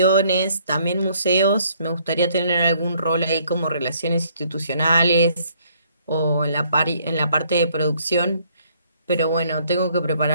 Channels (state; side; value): inverted; both; correlation -0.65